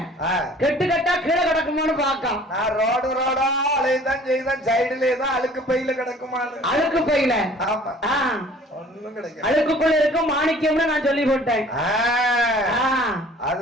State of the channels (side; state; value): both; normal; correlation 0.51